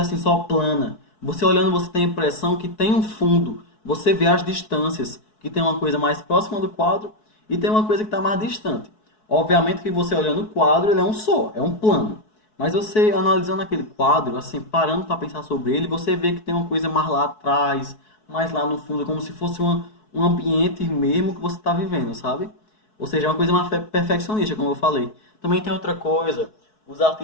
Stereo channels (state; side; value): late; right; 4.6 ms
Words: assim só plana. Você olhando, você tem a impressão que tem um fundo. Você vê as distâncias, que tem uma coisa mais próxima do quadro e tem uma coisa que está mais distante. Obviamente que você olhando o quadro, ele é um só, é um plano. Mas você analisando aquele quadro, assim, parando para pensar sobre ele, você vê que tem uma coisa mais lá atrás, mais lá no fundo, como se fosse um ambiente mesmo que você está vivendo, sabe? Ou seja, é uma coisa mais perfeccionista, como eu falei. Também tem outra coisa, os